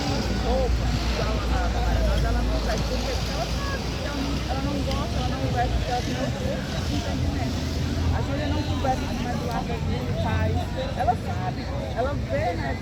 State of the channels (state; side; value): identical; both; correlation 1.00